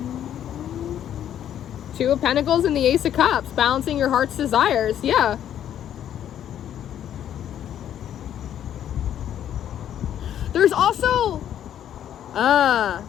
Two of Pentacles and the Ace of Cups, balancing your heart's desires. Yeah. There's also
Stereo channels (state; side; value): quieter; right; 10.4 dB